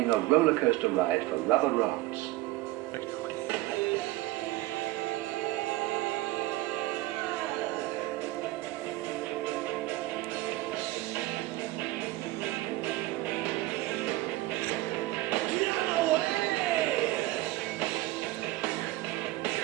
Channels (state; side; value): quieter; left; 18.1 dB